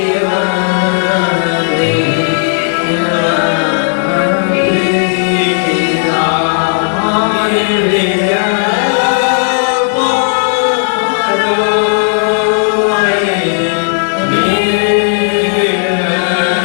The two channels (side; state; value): right; silent; digital silence